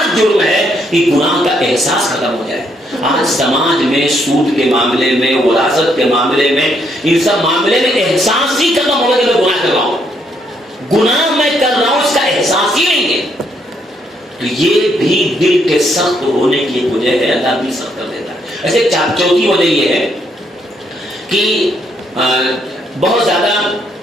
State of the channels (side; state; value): both; normal; correlation 0.73